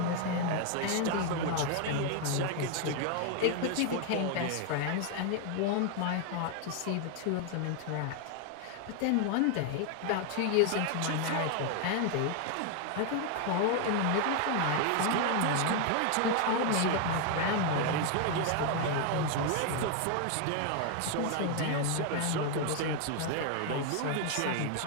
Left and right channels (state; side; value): different; both; correlation 0.00